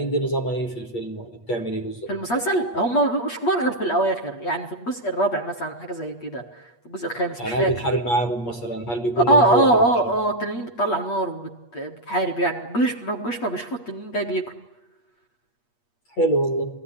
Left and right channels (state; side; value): late; right; 8.4 ms